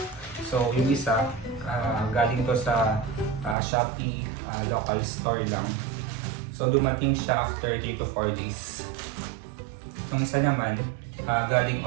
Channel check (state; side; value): drops out; left; at 3.6 s